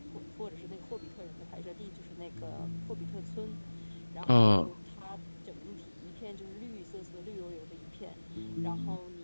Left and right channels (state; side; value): inverted; both; correlation -1.00